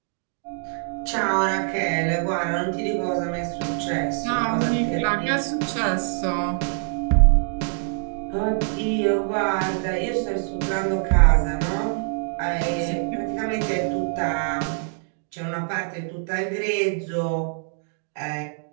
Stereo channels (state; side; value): silent; left; 62 dB below the other